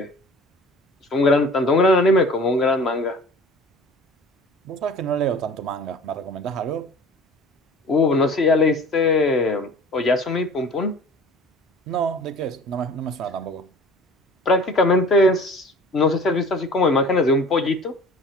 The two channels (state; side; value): normal; both; correlation 0.44